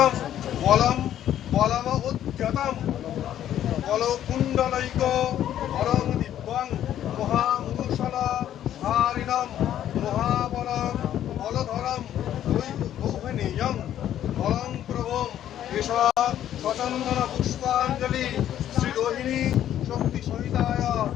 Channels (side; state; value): right; quieter; 11.2 dB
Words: বলম বলম উদ্যতম বলকুণ্ডলৈক হরং দিব্যং মহামূষল ধারিণম মহাবলং বলধরম গৌহনীয়ং বলং প্রভুম এষ সচন্দন পুষ্পাঞ্জলি শ্রী রোহিণী শক্তি সহিতায়